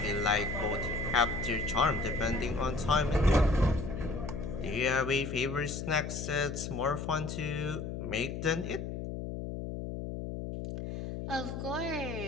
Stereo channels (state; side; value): noise; left; hum, 6 dB below the sound